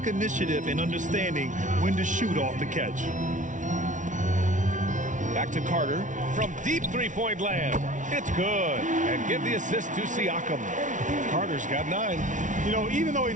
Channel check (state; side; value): late; left; 0.37 ms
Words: initiative in understanding when to shoot off the catch. Back to Carter from deep three-point land. It's good. And give the assist to Siakam. Carter's got 9. You know, even though he